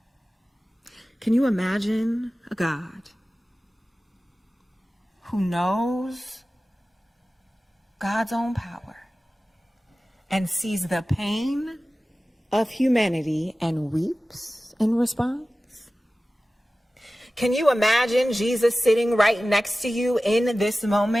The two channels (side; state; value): both; normal; correlation 0.96